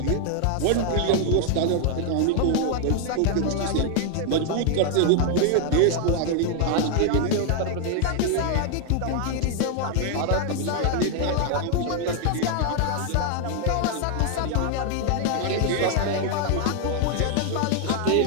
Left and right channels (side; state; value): both; different; correlation 0.00